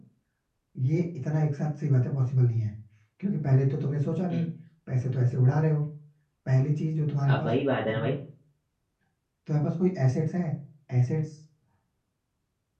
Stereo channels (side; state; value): both; identical; correlation 1.00